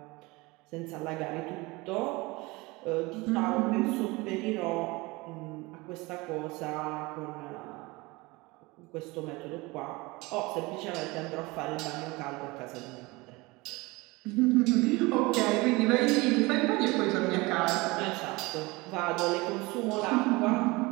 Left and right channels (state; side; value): quieter; left; 23.4 dB